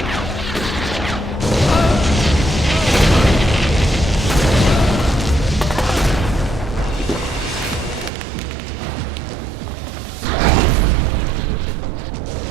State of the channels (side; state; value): left; drops out; at 8.1 s